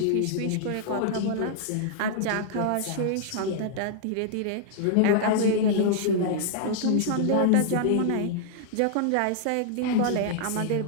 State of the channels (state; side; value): different; both; correlation -0.01